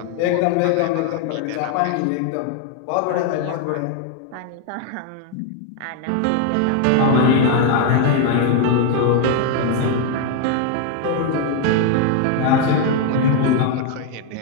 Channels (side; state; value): both; different; correlation 0.01